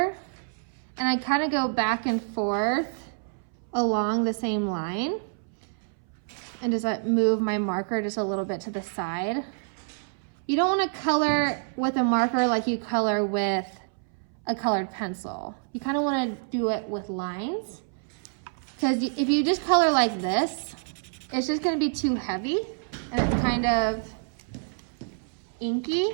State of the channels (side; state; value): left; silent; 60 dB below the other